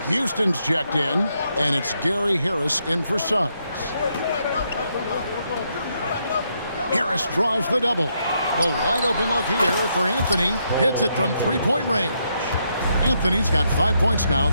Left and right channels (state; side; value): inverted; both; correlation -0.78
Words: Houston's checked in, and it's Gary Harris in for Suggs. Harris draws the double. The wide open look here for Anthony. Hits it from 3-point range. Anthony's got 5 points now